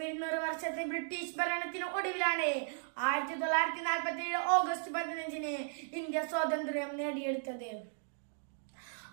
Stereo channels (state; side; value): silent; left; digital silence